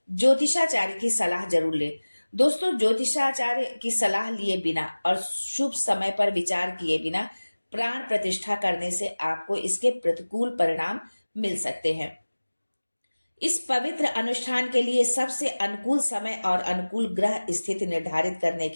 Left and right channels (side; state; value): both; inverted; correlation -1.00